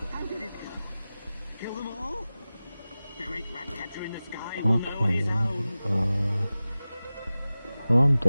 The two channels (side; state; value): both; inverted; correlation -0.96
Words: How did it go? Kill them all? The great rat catcher in the sky will know on his Okay, own. well, I'm